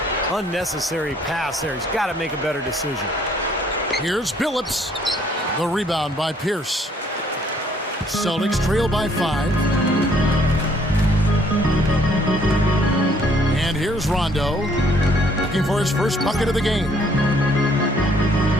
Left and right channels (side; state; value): both; normal; correlation 0.63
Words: Unnecessary pass there. He's got to make a better decision. Here's Billups. The rebound by Pierce. Celtics trail by 5. And here's Rondo. Looking for his first bucket of the game.